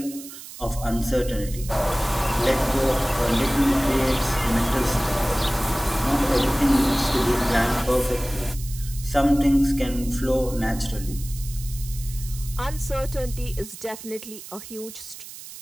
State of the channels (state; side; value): noise; right; hiss, 14 dB below the sound